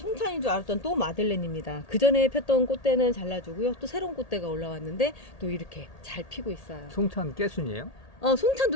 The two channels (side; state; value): right; late; 1.8 ms